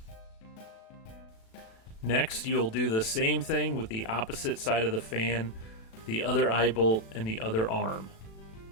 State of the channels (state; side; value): late; right; 36 ms